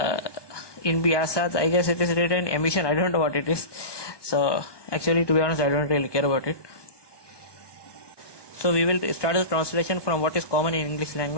in bi'asat, I guess it is written emission. I don't know what it is. So actually, to be honest, I don't really care about it. So we will start the translation from what is common in English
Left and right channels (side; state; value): right; late; 1.2 ms